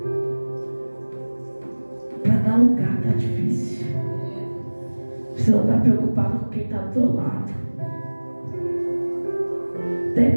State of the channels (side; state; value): both; inverted; correlation -1.00